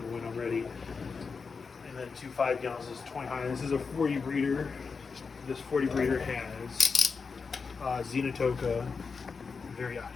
when I'm ready. And then 2 5-gallons is 20 high. This is a 40 breeder. This 40 breeder has Xenotoca variata.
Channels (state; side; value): quieter; right; 5.1 dB